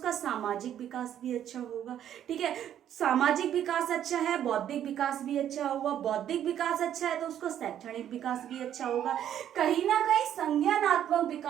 सामाजिक विकास भी अच्छा होगा, ठीक है। सामाजिक विकास अच्छा है, बौद्धिक विकास भी अच्छा होगा, बौद्धिक विकास अच्छा है तो उसका शैक्षणिक विकास भी अच्छा होगा। कहीं ना कहीं संज्ञानात्मक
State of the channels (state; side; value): quieter; left; 10.5 dB